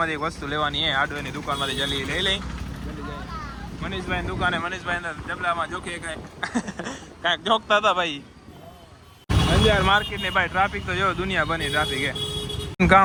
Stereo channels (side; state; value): both; identical; correlation 1.00